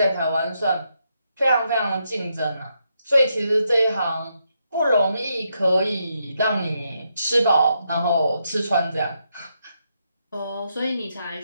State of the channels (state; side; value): inverted; both; correlation -0.80